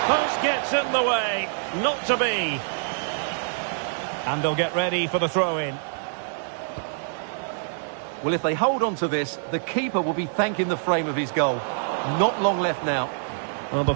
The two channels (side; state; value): left; silent; 61 dB below the other